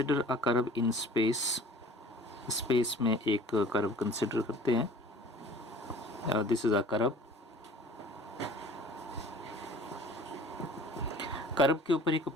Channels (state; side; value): normal; both; correlation 0.47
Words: a curve in space. Space में एक कर्व कंसिडर करते हैं। This is a curve. Curve के ऊपर एक